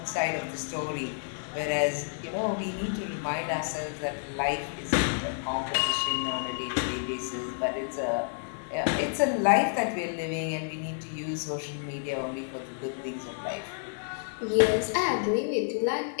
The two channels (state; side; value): silent; right; digital silence